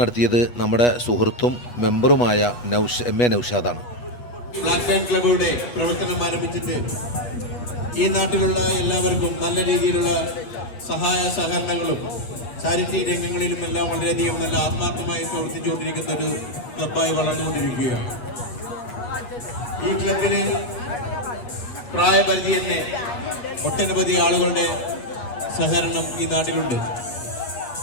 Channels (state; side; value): late; right; 8.2 ms